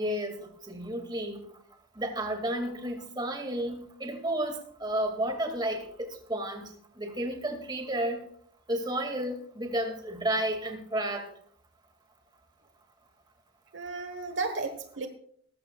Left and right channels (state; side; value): normal; both; correlation 0.27